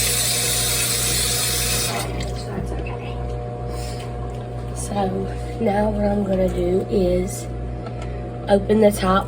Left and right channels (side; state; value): both; identical; correlation 1.00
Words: So that's okay. So now what I'm gonna do is open the top